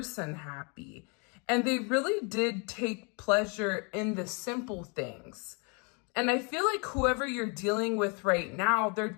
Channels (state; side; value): quieter; right; 34.4 dB